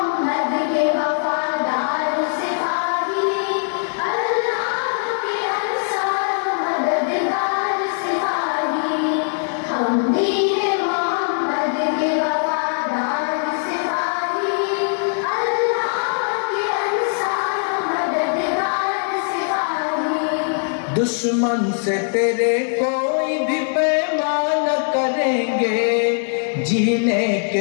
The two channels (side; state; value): right; silent; digital silence